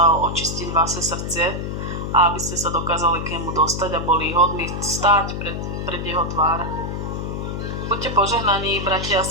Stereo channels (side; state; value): left; noise; hum, 4 dB below the sound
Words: očistiť vaše srdce a aby ste sa dokázali k nemu dostať a boli hodní stáť pred jeho tvár. Buďte požehnaní, bratia a